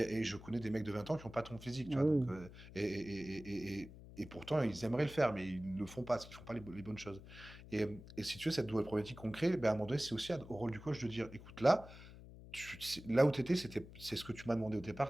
je connais des mecs de 20 ans qui n'ont pas ton physique, tu Ah vois, donc, oui, et pourtant, ils aimeraient le faire, mais ils ne le font pas, parce qu'ils ne font pas les bonnes choses. Et si tu veux, cette nouvelle problématique qu'on crée, ben, à un moment donné, c'est aussi au rôle du coach de dire, écoute, là, là où tu étais, c'est ce que tu m'as demandé au départ,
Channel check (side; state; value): left; noise; hum, 16 dB below the sound